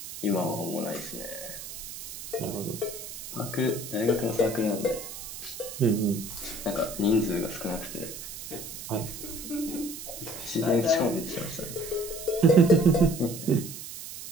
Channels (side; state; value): right; noise; hiss, 10 dB below the sound